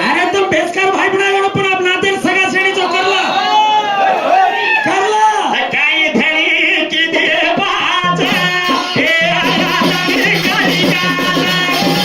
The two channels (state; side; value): identical; both; correlation 1.00